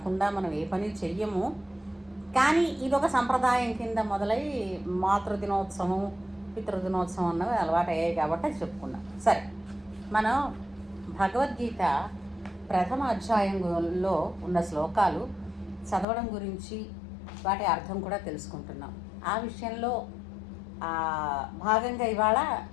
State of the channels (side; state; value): right; drops out; at 16.1 s